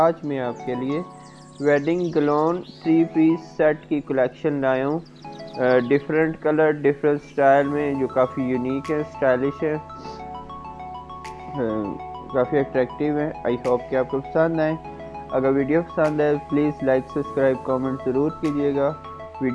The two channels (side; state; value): both; identical; correlation 1.00